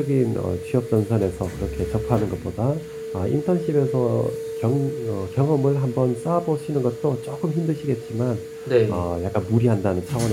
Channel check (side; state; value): both; identical; correlation 1.00